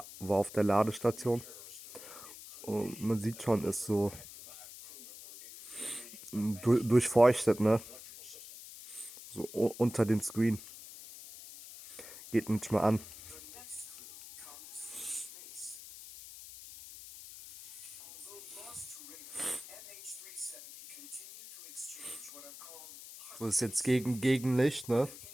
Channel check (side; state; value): left; noise; hiss, 15 dB below the sound